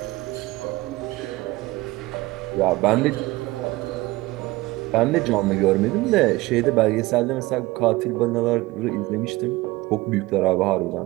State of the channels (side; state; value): left; quieter; 20.1 dB